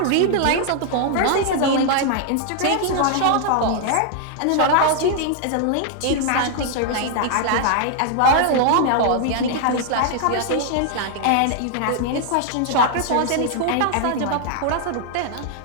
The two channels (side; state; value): both; different; correlation 0.00